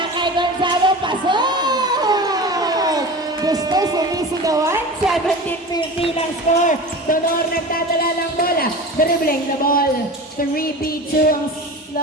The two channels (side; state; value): both; normal; correlation 0.32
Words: kay Gonzalo, pasok! Gusto sumisigawan, 17-15 ang score. Donor nagdadala ng bola, dribbling the ball. 3-B2 ang